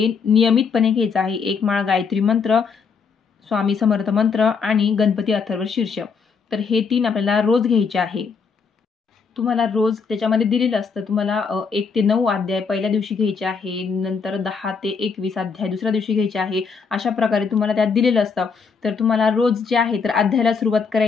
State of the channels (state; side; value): quieter; right; 5.5 dB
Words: नियमितपणे घ्यायचं आहे. 1 माळ गायत्री मंत्र, स्वामी समर्थ मंत्र आणि गणपती अथर्व शीर्ष. तर हे 3 आपल्याला रोज घ्यायचे आहे. तुम्हाला रोज त्याच्यामध्ये दिलेलं असतं. तुम्हाला 1 ते 9 अध्याय पहिल्या दिवशी घ्यायचे आहे, नंतर 10 ते 21 अध्याय दुसऱ्या दिवशी घ्यायचे आहे. अशा प्रकारे तुम्हाला त्यात दिलेलं असतं. तर तुम्हाला रोज जे आहे तर अध्यायाला सुरुवात